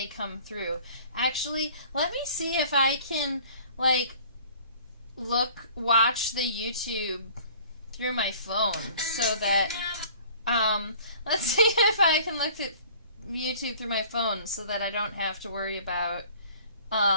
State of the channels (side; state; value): both; inverted; correlation -0.49